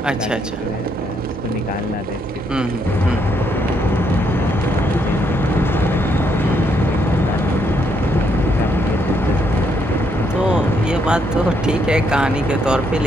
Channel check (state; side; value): normal; both; correlation 0.74